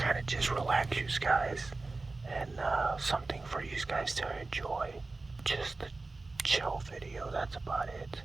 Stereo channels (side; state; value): left; quieter; 3.5 dB